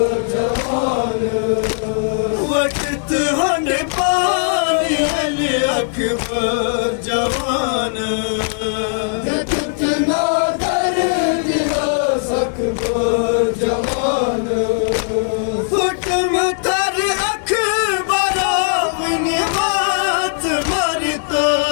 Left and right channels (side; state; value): right; silent; digital silence